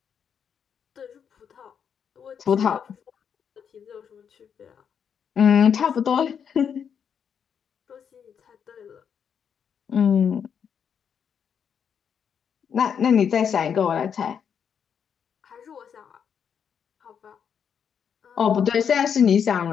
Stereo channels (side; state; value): right; quieter; 7.5 dB